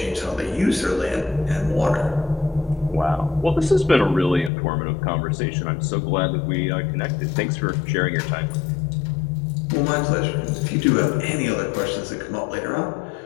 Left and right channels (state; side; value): drops out; right; at 4.5 s